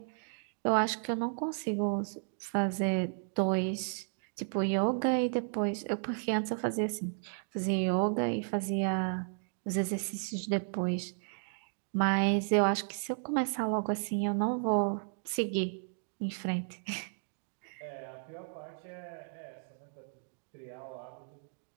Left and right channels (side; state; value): left; silent; digital silence